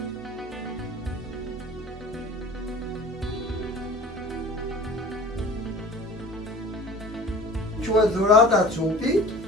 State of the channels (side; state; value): both; normal; correlation 0.43